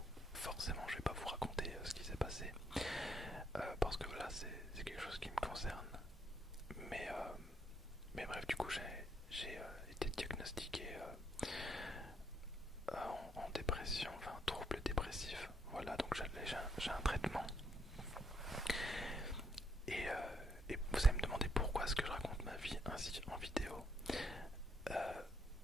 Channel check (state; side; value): normal; both; correlation 0.74